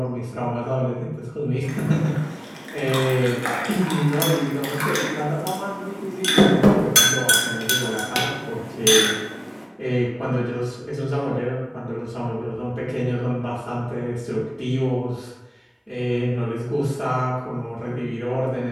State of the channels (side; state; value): both; identical; correlation 1.00